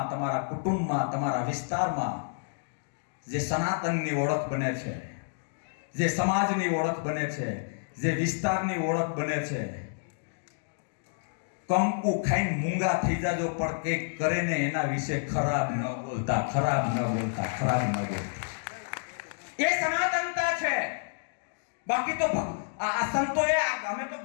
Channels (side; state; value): right; silent; digital silence